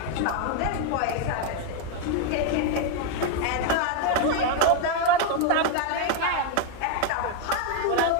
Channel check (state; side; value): different; both; correlation 0.01